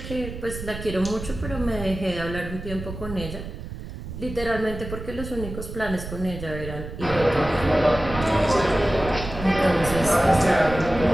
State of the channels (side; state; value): right; noise; rumble, 9 dB below the sound